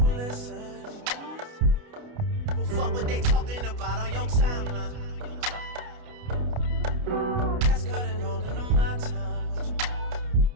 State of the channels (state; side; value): late; left; 29 ms